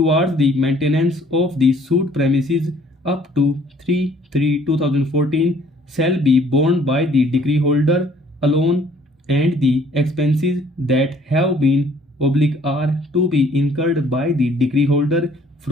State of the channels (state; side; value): normal; both; correlation 0.58